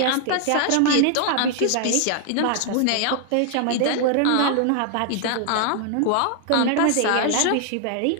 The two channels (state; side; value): different; both; correlation 0.00